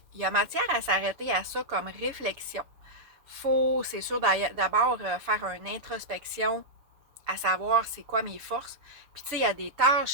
il y a matière à s'arrêter à ça comme réflexion. Faut, c'est sûr, d'abord faire une introspection à savoir c'est quoi mes forces. Puis tu sais, il y a des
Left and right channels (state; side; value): late; left; 7.1 ms